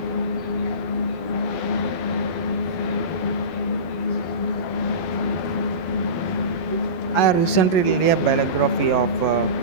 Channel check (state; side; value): late; right; 12 ms